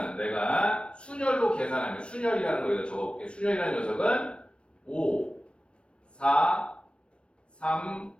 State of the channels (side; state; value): right; late; 0.058 ms